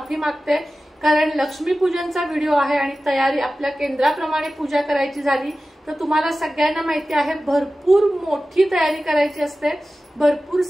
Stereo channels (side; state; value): both; normal; correlation 0.95